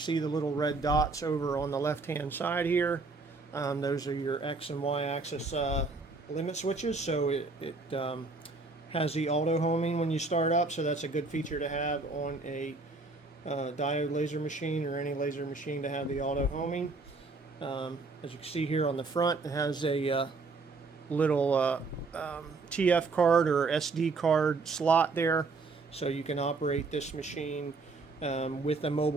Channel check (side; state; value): left; quieter; 3.8 dB